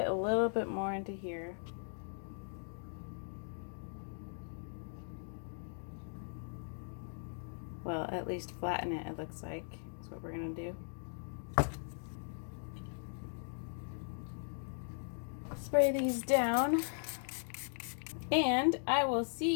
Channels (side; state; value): right; silent; digital silence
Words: a little bit more into here. Well, at least flatten it, it looks like. That's what we're gonna do. Spray these down, and I will